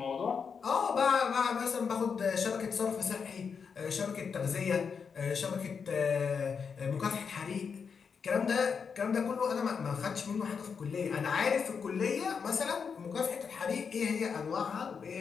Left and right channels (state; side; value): quieter; right; 6.1 dB